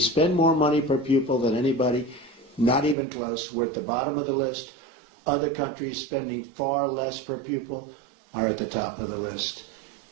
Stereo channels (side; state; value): left; drops out; at 3.0 s